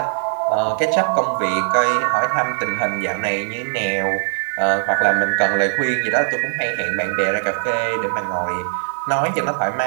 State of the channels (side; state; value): left; silent; digital silence